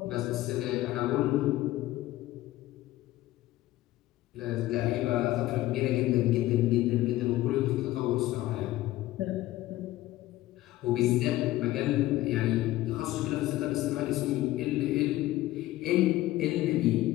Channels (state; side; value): quieter; right; 16.3 dB